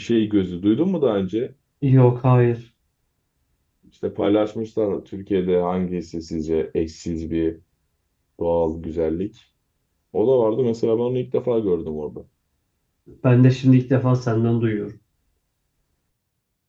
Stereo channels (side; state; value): both; identical; correlation 1.00